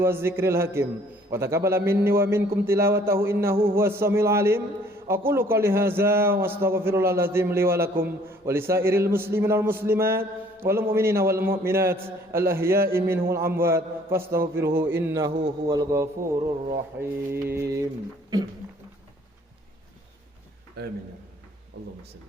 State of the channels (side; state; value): both; normal; correlation 0.58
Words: zikril hakim, wa taqabbala minni wa minkum tilawatahu innahu huwas samiul alim. Aqulu qouli hadza wa astaghfirullahal azim li wa lakum wa lisairil muslimina wal muslimat wal mu'minina wal mu'minat al ahya'i minhum wal amwat fastaghfiruhu innahu huwal ghafurur rahim. Amin. Allahumma